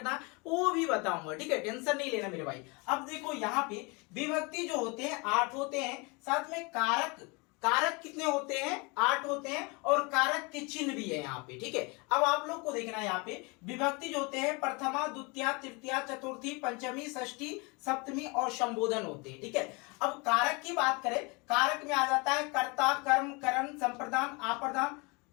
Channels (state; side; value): quieter; right; 28.8 dB